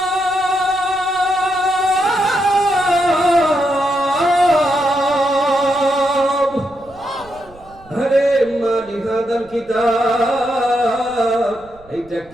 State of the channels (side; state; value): right; noise; rumble, 25 dB below the sound